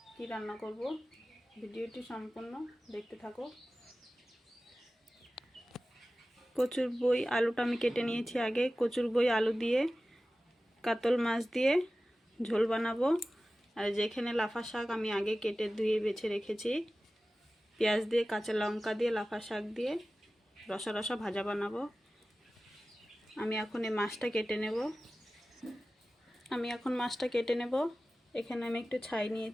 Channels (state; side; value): normal; both; correlation 0.96